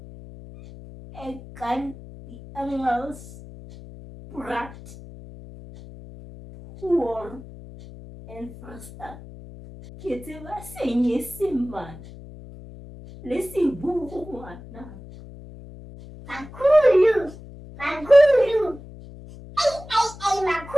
E kan die Engels praat hoor en verstaan. Ke tseba Senyesemane le Seburu ngwana. Makhulu. Makhulu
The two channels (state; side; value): noise; left; hum, 16 dB below the sound